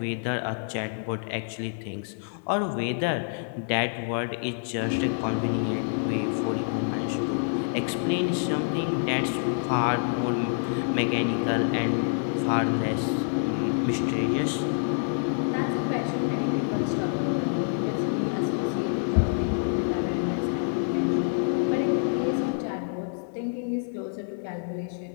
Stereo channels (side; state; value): right; silent; 60 dB below the other